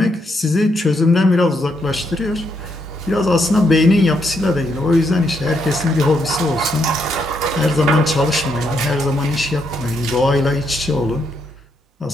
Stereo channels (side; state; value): both; normal; correlation 0.77